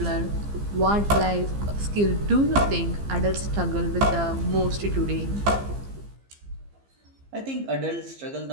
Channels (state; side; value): late; left; 15 ms